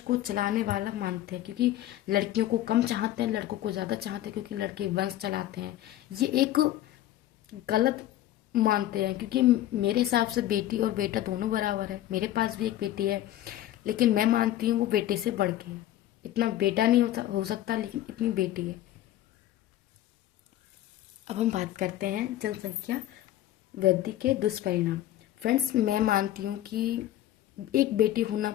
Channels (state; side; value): quieter; right; 13.6 dB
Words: चलाने वाला मानते हैं, क्योंकि लड़कियों को कम चाहते हैं, लड़कों को ज़्यादा चाहते हैं, क्योंकि लड़के वंश चलाते हैं। ये एक गलत मानते हैं, क्योंकि मेरे हिसाब से बेटी और बेटा दोनों बराबर है। मेरे पास भी एक बेटी है, लेकिन मैं मानती हूँ वो बेटे से बढ़ के, इतना बेटा नहीं हो सकता, लेकिन इतनी बेटी है। अब हम बात करते हैं जनसंख्या वृद्धि के दुष्परिणाम। फ्रेंड्स, मैं मानती हूँ कि एक बेटी होना